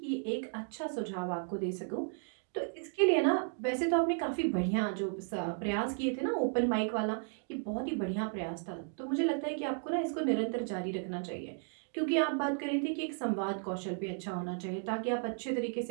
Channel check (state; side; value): silent; left; 55 dB below the other